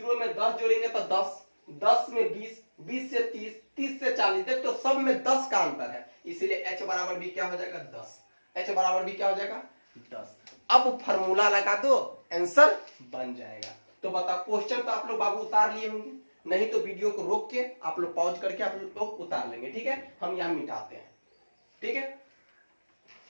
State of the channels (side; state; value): both; inverted; correlation -1.00